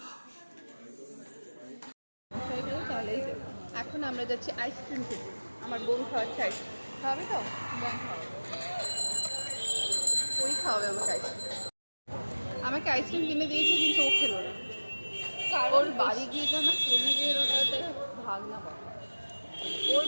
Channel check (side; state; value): both; inverted; correlation -1.00